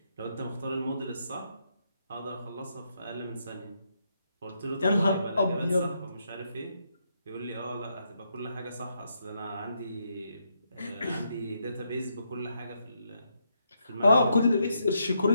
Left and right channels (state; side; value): inverted; both; correlation -0.79